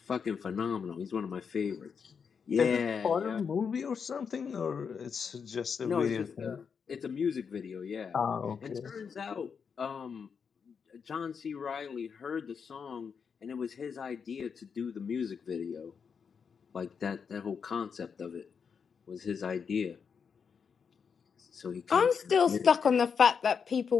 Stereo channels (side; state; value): right; quieter; 6.3 dB